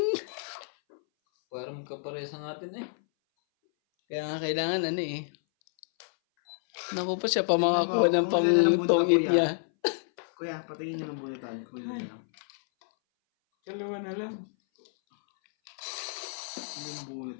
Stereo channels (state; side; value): silent; right; 58 dB below the other